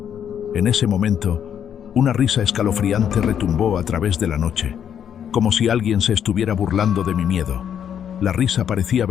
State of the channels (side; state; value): right; quieter; 8.8 dB